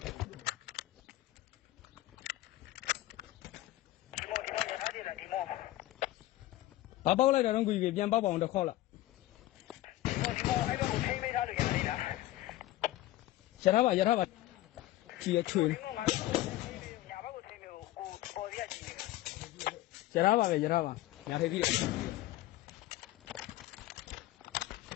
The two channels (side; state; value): right; quieter; 15.9 dB